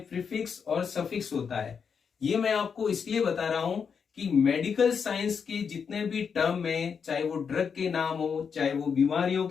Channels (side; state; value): right; quieter; 6.4 dB